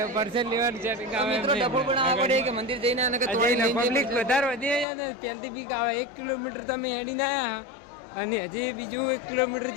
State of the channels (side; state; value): right; drops out; at 4.9 s